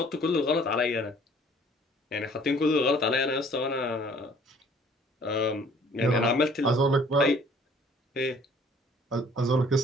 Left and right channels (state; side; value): normal; both; correlation 0.55